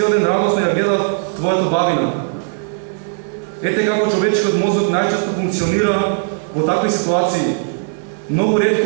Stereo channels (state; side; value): silent; left; digital silence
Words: ден радосно ја гледав твојата бавина. Ете како човечкиот мозок најчесто функционира во такви ситуации. Многу